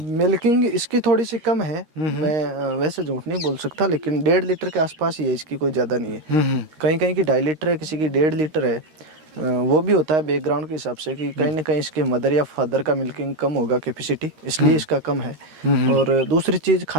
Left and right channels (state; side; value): late; left; 13 ms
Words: मिल्किंग इसकी थोड़ी सी कम है। मैं वैसे झूठ नहीं बोल सकता, लेकिन 1.5 लीटर के आसपास ही है इसकी, कोई ज़्यादा नहीं है। कहीं कहीं की 2.5 लीटर है, किसी की 1.5 लीटर है। वो भी होता है बैकग्राउंड के हिसाब से कि कहीं ना कहीं इसके मदर या फादर का मिल्किंग कम होगा कैपेसिटी, इसलिए इसका कम है। और दूसरी चीज़